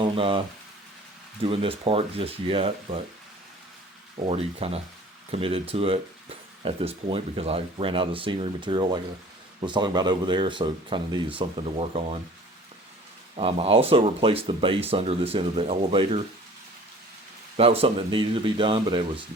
doing this part just yet, but already kind of committed to it at this point because I ran out of scenery material like I was talking about over there, so kind of needed something to work on. I also replaced the base under this end of the elevator. That was something that needed to be done, but it was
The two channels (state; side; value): normal; both; correlation 0.47